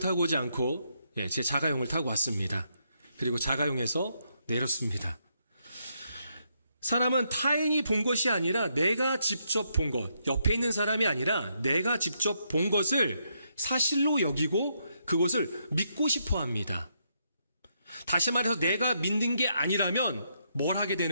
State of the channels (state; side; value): inverted; both; correlation -0.77